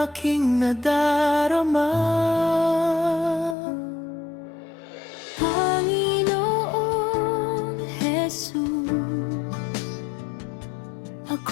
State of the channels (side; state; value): right; drops out; at 3.6 s